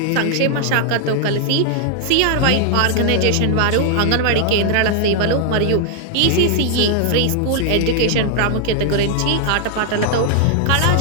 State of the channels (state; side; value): different; both; correlation 0.00